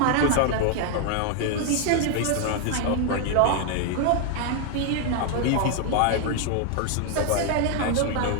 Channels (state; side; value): different; both; correlation 0.00